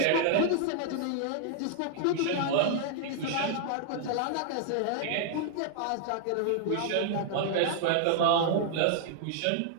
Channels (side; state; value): both; different; correlation -0.01